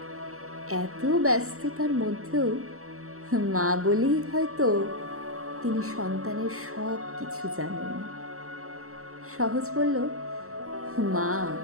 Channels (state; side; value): late; left; 0.64 ms